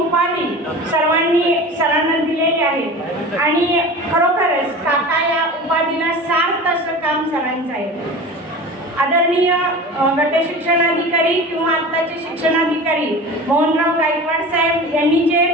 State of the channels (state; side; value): normal; both; correlation 0.34